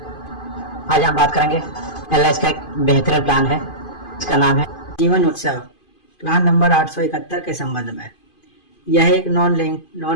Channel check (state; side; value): late; right; 2.5 ms